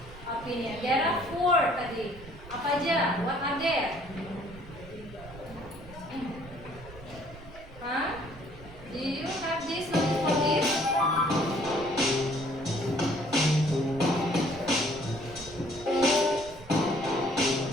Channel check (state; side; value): noise; right; rumble, 18 dB below the sound